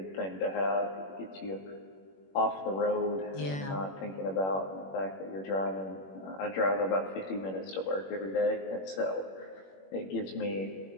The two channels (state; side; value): late; right; 21 ms